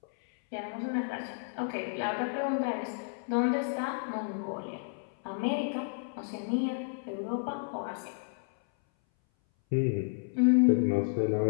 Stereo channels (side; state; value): right; silent; 57 dB below the other